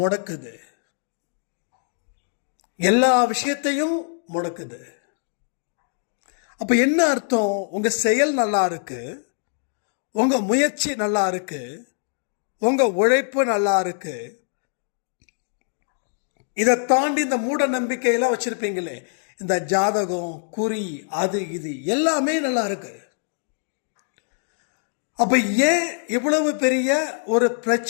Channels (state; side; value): silent; right; digital silence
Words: எல்லா விஷயத்தையும் முடக்குது. அப்ப என்ன அர்த்தம்? உங்க செயல் நல்லா இருக்கு, உங்க முயற்சி நல்லா இருக்கு, உங்க உழைப்பு நல்லா இருக்கு, இதை தாண்டி இந்த மூட நம்பிக்கையெல்லாம் வச்சிருப்பீங்களே, இந்த ஜாதகம், குறி, அது இது எல்லாமே நல்லா இருக்கு. அப்ப ஏன் இவ்வளவு பெரிய ஒரு